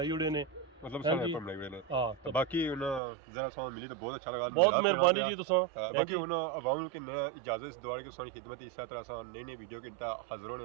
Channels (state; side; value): drops out; left; at 3.0 s